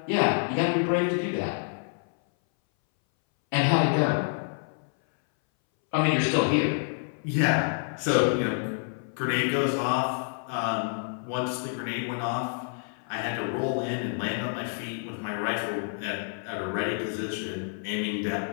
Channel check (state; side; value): silent; right; 59 dB below the other